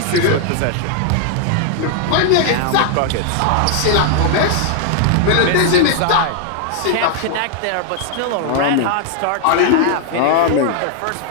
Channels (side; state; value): both; different; correlation 0.00